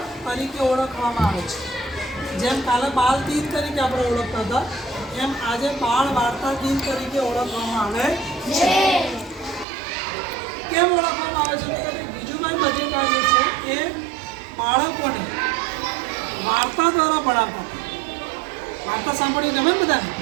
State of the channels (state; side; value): drops out; left; at 9.7 s